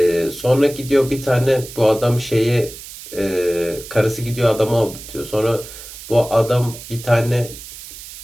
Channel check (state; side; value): noise; right; hiss, 14 dB below the sound